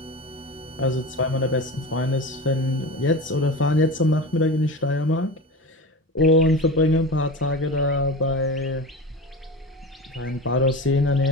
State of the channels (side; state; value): both; normal; correlation 0.29